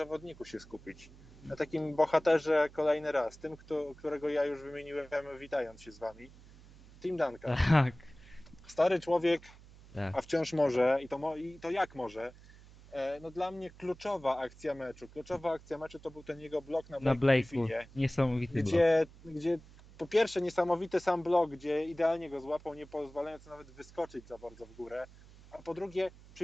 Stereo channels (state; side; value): noise; right; hum, 21 dB below the sound